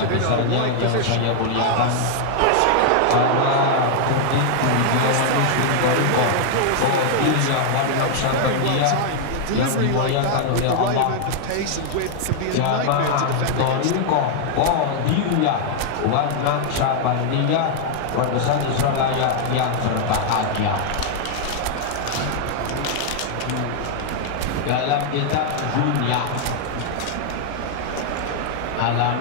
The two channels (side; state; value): both; different; correlation 0.00